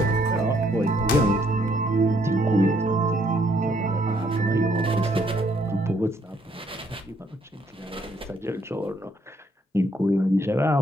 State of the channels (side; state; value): both; normal; correlation 0.69